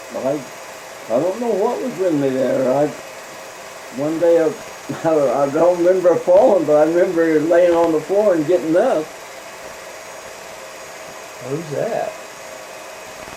I don't know what was with me there. One day I don't remember falling, but I remember laying on the floor and getting up. Who's that?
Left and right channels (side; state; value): both; identical; correlation 1.00